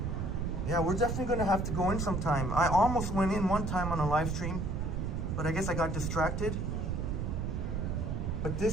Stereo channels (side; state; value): right; noise; rumble, 1 dB below the sound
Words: Yeah, we're definitely gonna have to go in sometime. I almost went in one time on a live stream, but I guess I got distracted. But